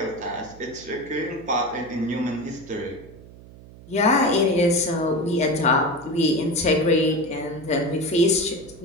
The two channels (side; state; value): right; noise; hum, 20 dB below the sound